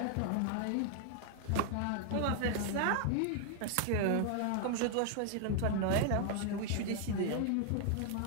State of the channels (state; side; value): different; both; correlation 0.00